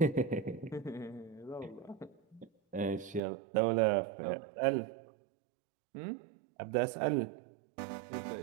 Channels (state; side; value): drops out; left; at 3.2 s